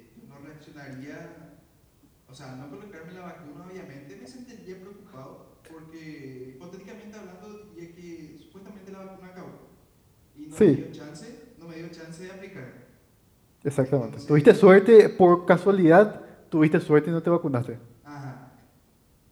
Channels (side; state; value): both; identical; correlation 1.00